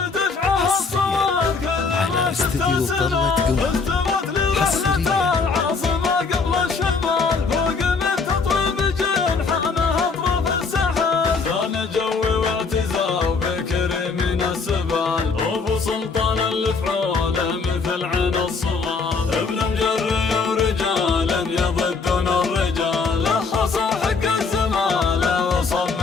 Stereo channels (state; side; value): quieter; right; 4.6 dB